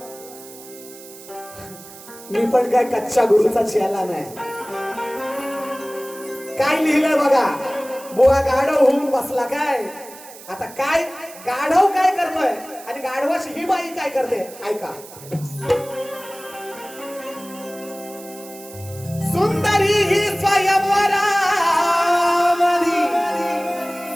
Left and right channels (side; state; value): right; noise; hiss, 18 dB below the sound